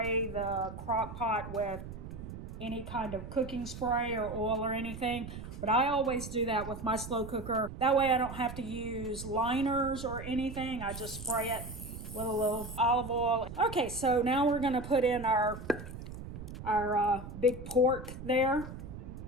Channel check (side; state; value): right; noise; rumble, 10 dB below the sound